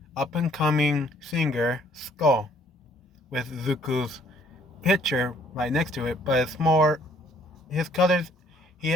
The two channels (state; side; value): normal; both; correlation 0.62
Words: up and coming singer Skull with Zuko's picture right next to it, but it's more his colors. He